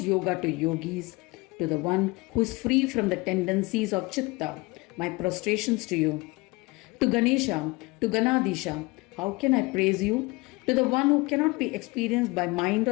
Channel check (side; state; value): right; quieter; 24.6 dB